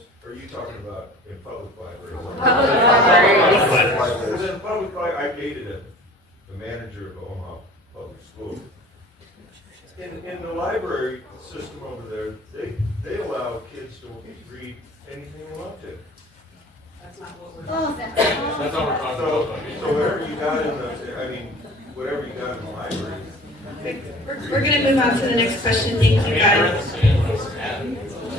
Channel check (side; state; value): both; normal; correlation 0.46